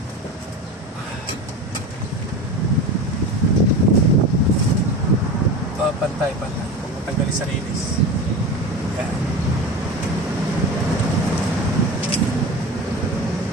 Pantay. Kung matanggalin sa linis. Yan.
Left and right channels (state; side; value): normal; both; correlation 0.29